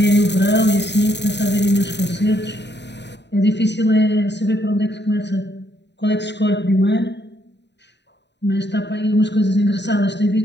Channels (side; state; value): right; late; 0.50 ms